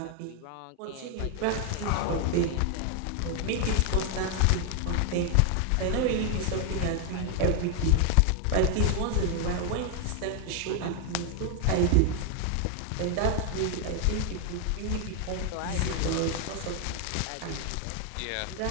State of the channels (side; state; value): both; different; correlation 0.00